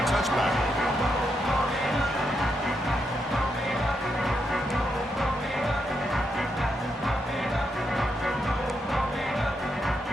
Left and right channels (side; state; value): both; normal; correlation 0.81